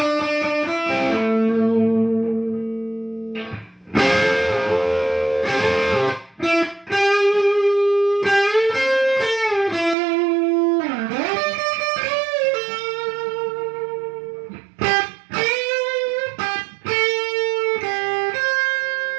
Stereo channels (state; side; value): drops out; left; at 10.0 s